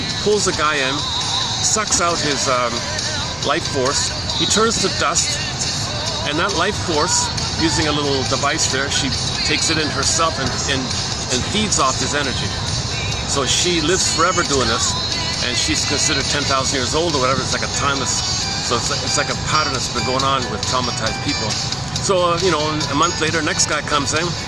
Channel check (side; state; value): left; noise; rumble, 18 dB below the sound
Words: pulls the guy in, sucks out his life force. He turns to dust, and that life force, using a little device there, she takes it in herself and feeds off his energy. So she lives forever doing this, and she's considered 10,000 years old or whatever. It's like a timeless. So it's like a pattern that's been going on with traumatized people. So you know, a month later, next guy comes in.